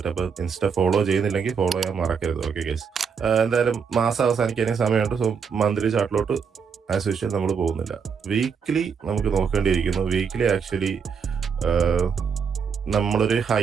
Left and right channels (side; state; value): left; quieter; 6.3 dB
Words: അപ്പോൾ ഇൻസ്റ്റ ഫോളോ ചെയ്യുന്നില്ലെങ്കിൽ ഫോളോ ചെയ്യാൻ മറക്കരുത്. ഓക്കെ ഗൈസ്, എന്തായാലും മാസം അവസാനിക്കാനേ സമയമുണ്ട്. സോ മന്ത്ലി ചാർട്ടിലോട്ട് ആസ് യൂഷ്വൽ നമ്മൾ പോകുന്നില്ല. വീക്ക്ലി നമുക്ക് നോക്കേണ്ടിയിരിക്കുന്നു. വീക്ക്ലി ആക്ച്വലി നമ്മളൊരു